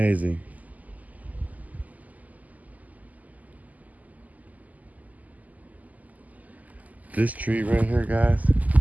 This tree right here, guys,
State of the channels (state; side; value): late; left; 0.078 ms